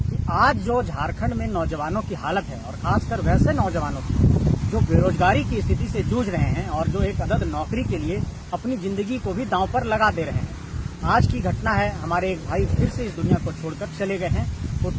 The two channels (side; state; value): both; identical; correlation 1.00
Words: कि आज जो झारखंड में नौजवानों की हालत है, और खासकर वैसे नौजवानों की जो बेरोजगारी की स्थिति से जूझ रहे हैं और जो एक अदद नौकरी के लिए अपनी जिंदगी को भी दांव पर लगा दे रहे हैं। आज की घटना है, हमारे एक भाई फिर से इस दुनिया को छोड़कर चले गए हैं।